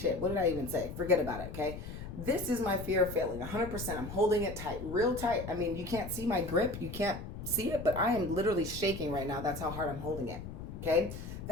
what did I even say? Forget about it, okay? This is my fear of failing, 100%. I'm holding it tight, real tight. I mean, you can't see my grip. You can't see it, but I am literally shaking right now. That's how hard I'm holding it, okay?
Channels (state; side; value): noise; left; rumble, 9 dB below the sound